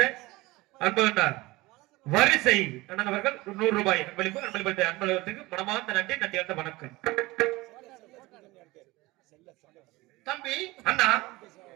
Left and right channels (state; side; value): quieter; left; 20.9 dB